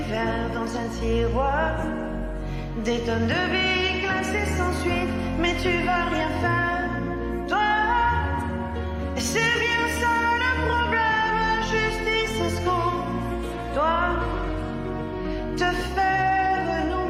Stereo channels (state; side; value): identical; both; correlation 1.00